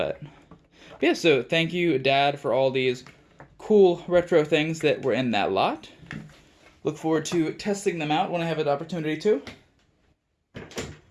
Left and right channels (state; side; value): identical; both; correlation 1.00